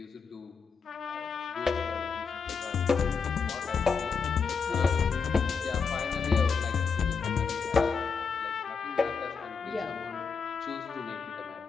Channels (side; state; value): right; quieter; 5.6 dB